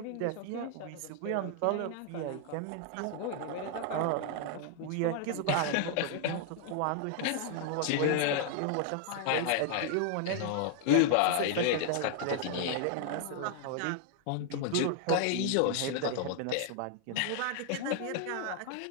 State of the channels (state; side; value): different; both; correlation 0.00